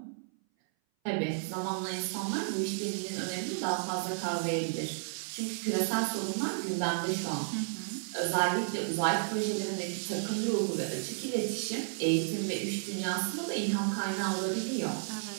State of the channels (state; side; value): silent; left; 56 dB below the other